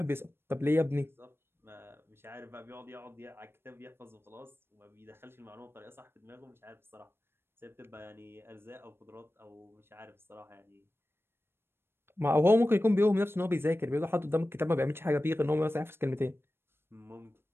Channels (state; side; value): late; left; 0.11 ms